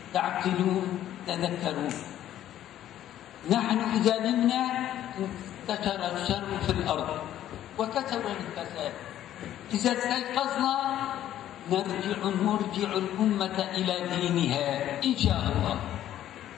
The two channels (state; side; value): quieter; right; 12.1 dB